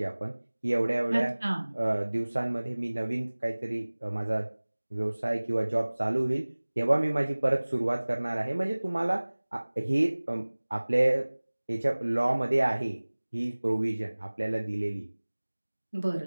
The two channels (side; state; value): both; inverted; correlation -1.00